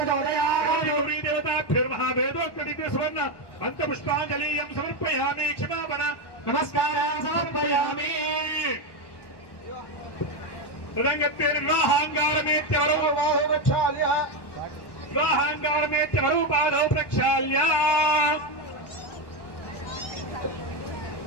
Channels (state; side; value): late; right; 1.1 ms